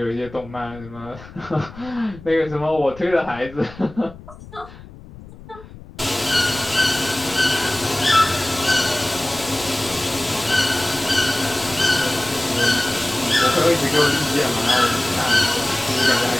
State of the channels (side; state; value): left; noise; rumble, 18 dB below the sound